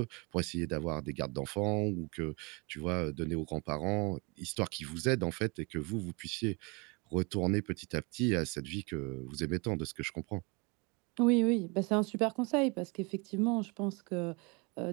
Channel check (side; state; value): left; quieter; 29.7 dB